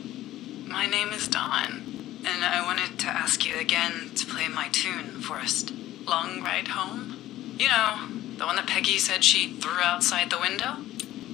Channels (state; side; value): quieter; right; 14.6 dB